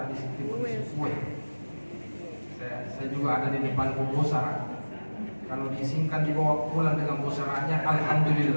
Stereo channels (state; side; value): inverted; both; correlation -1.00